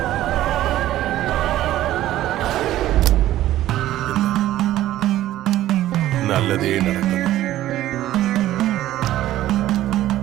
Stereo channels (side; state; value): left; quieter; 14.0 dB